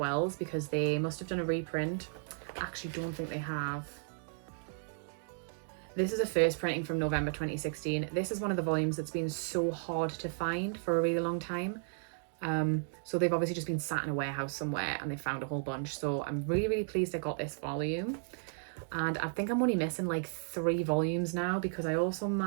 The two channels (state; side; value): silent; left; digital silence